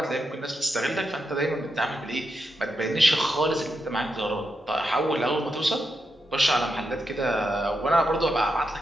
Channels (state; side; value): normal; both; correlation 0.85